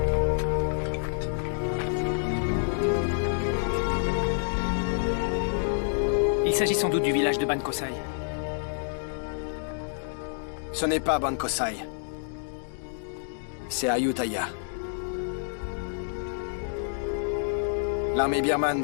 Il s'agit sans doute du village de Ban Kosai. Ce n'est pas Ban Kosai. C'est Ayutthaya. L'armée birmane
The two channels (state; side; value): silent; right; digital silence